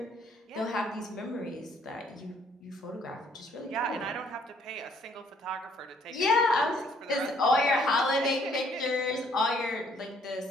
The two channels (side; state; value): both; normal; correlation 0.64